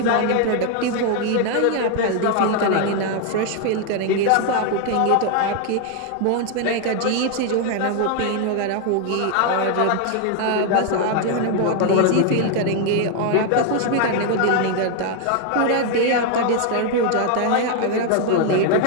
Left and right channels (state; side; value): different; both; correlation 0.01